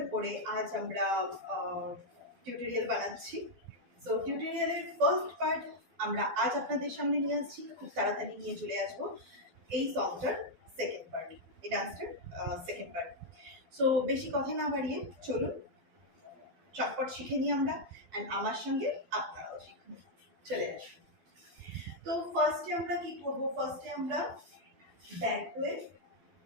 উপরে আজ আমরা টিউটোরিয়াল বানাচ্ছি। সো টিউটোরিয়ালের ফার্স্ট পার্ট আমরা আজ আপনাদের সামনে নিয়ে আসছি, খুব তাড়াতাড়ি নিয়ে চলে আসবো এই সংটার সেকেন্ড পার্ট, এই ডান্সটার সেকেন্ড পার্ট। সো বেশি কথা না বাড়িয়ে চলুন চটপট শিখে নিই আমরা, অ্যান্ড আমার সঙ্গে আপনারাও শিখুন। চলে আসুন। তো ফার্স্টে আমরা কি করব? ফার্স্টে আমরা ব্যাক হয়ে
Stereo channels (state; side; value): late; left; 12 ms